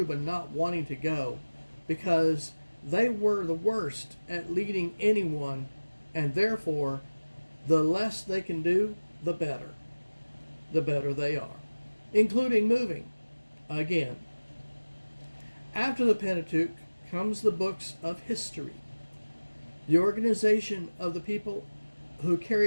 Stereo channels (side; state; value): both; inverted; correlation -1.00